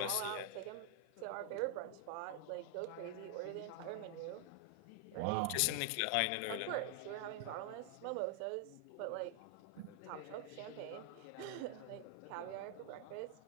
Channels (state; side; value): different; both; correlation 0.00